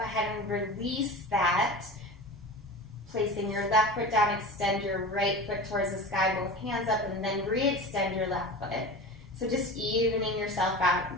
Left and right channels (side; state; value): both; normal; correlation 0.32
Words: ahead and release that. Placing your left foot down, extend your right foot towards the sky, both hands up, and then re-extend your left foot. So just evening yourself out.